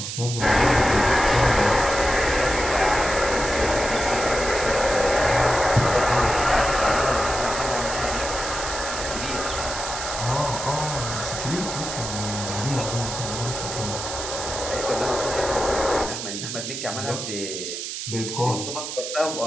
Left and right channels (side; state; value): right; noise; hiss, 6 dB below the sound